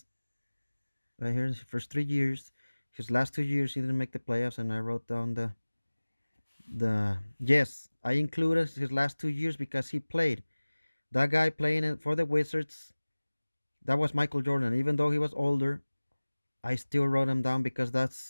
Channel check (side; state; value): both; inverted; correlation -1.00